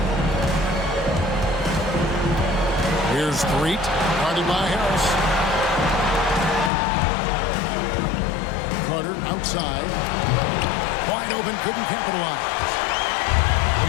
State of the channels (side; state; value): right; drops out; at 6.7 s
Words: Street, guarded by Harris. Carter outside. Wide open, couldn't capitalize.